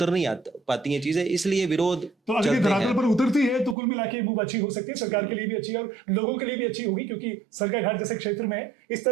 नहीं पाती हैं चीजें, इसलिए विरोध तो अगर ये चलते धरातल हैं। पर उतरती है तो कुल मिला के मूव अच्छी हो सकती है, सरकार के लिए भी अच्छी है और लोगों के लिए भी अच्छी होगी, क्योंकि सरकाघाट जैसे क्षेत्र में इस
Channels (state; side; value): drops out; left; at 3.8 s